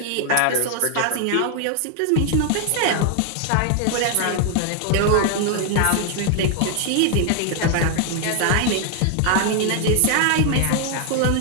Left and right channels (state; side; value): different; both; correlation 0.00